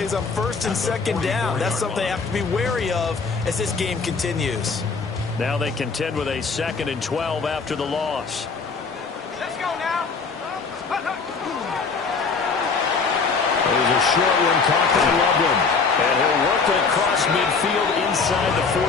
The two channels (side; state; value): right; quieter; 4.8 dB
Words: on 1st and 2nd down. That's something they have to be wary of as this game continues. Now they contend with a 2nd and 12 after the loss. Let's go now. There's a short one caught by Loveland. And he'll work it across midfield inside the